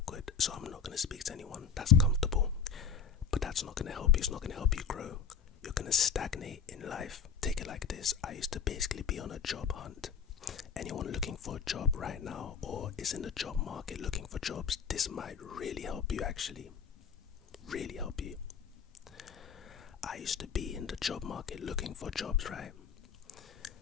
so I'm not going to speak to anyone, that's comfortable, but that's not going to help you. It's not going to help you grow. You're going to stagnate in life. Take it like this. I used to basically be on a job hunt. Anyone looking for a job right now or is in the job market looking for jobs, this might really help you actually. Really help you. I used to be in the job market looking for jobs, right?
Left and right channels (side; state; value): right; quieter; 6.6 dB